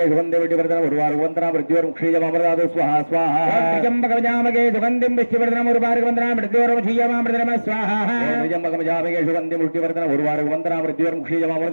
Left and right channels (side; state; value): both; inverted; correlation -1.00